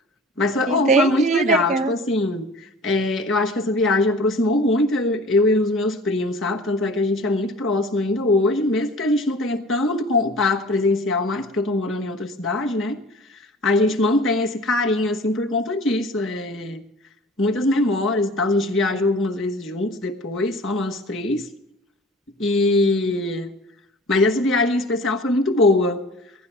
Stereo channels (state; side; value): normal; both; correlation 0.44